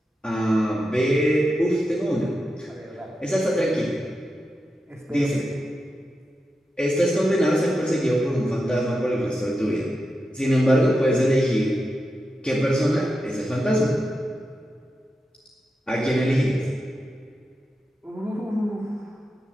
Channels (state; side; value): normal; both; correlation 0.89